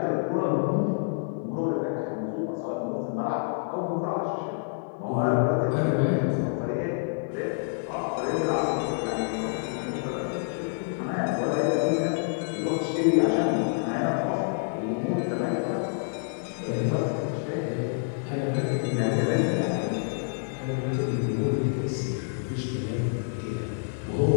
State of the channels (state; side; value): silent; right; 60 dB below the other